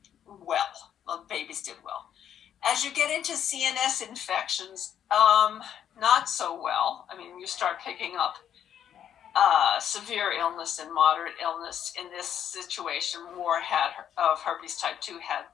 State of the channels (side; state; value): right; quieter; 9.6 dB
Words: well. Well, babies did well. As you get into CNS infections, not so well. I mean, you start picking up severe illness and moderate illness. In this situation, more of herpes type 2 had